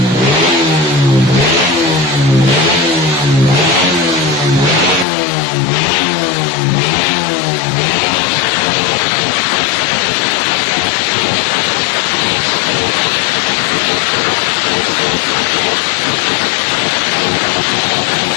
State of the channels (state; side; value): drops out; right; at 5.1 s